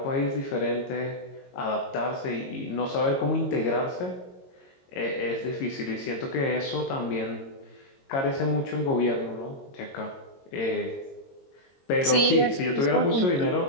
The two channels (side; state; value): right; late; 22 ms